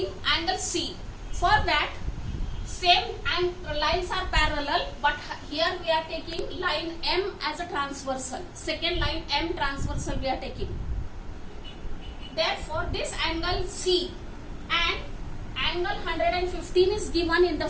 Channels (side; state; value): both; identical; correlation 1.00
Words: angle C. For that, same lines are parallel, but here we are taking line M as a transversal. Second line M transversal we are taking. Therefore, this angle C and angle 115 is given in the